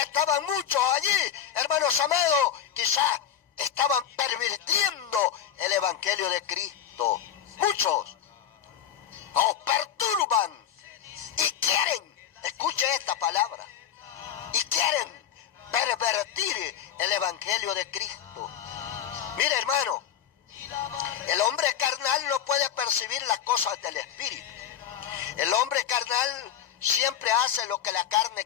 muchos allí, hermanos amados, quizás estaban pervirtiendo el evangelio de Cristo. Muchos os perturban y quieren, escuche esta palabra, y quieren pervertir el evangelio de Cristo. Mire, hermano, el hombre carnal no puede percibir las cosas del espíritu. El hombre carnal siempre hace lo que la carne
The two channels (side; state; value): right; quieter; 9.4 dB